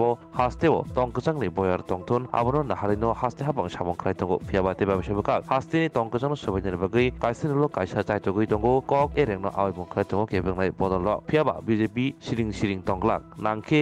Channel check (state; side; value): identical; both; correlation 1.00